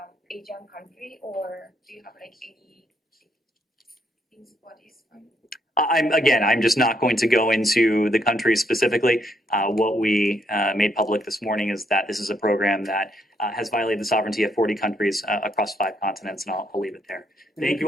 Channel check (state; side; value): normal; both; correlation 0.74